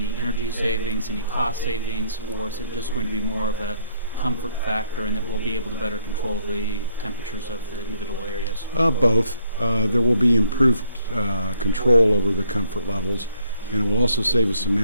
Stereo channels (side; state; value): both; inverted; correlation -0.68